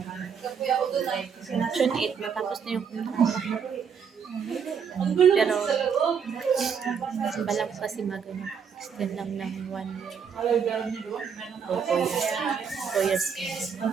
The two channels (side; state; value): left; quieter; 6.8 dB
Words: June 8, matapos na yung kontrata. Pero, balang kasi extend lang ng 1 year. O 4 years. 4 years.